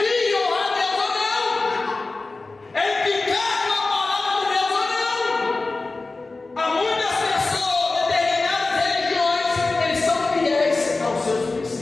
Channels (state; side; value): quieter; right; 3.5 dB